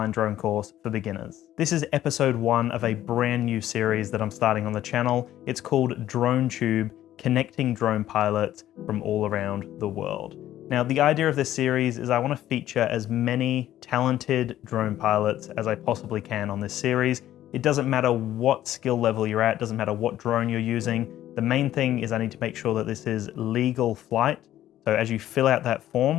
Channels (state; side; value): quieter; right; 12.9 dB